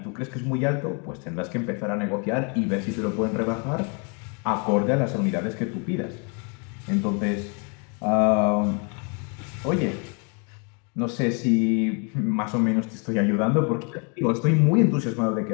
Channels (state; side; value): quieter; right; 36.2 dB